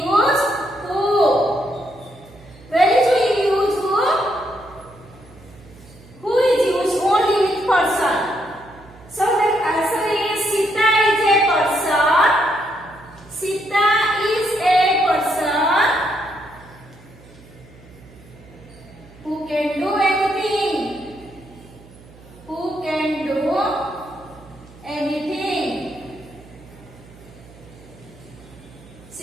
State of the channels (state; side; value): noise; right; hum, 23 dB below the sound